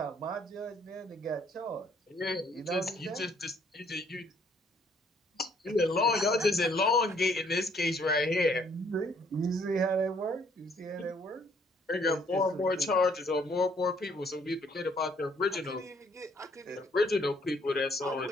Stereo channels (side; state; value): both; normal; correlation 0.64